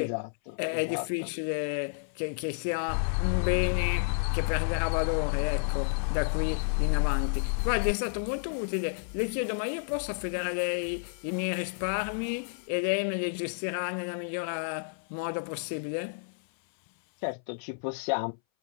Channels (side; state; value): right; silent; 58 dB below the other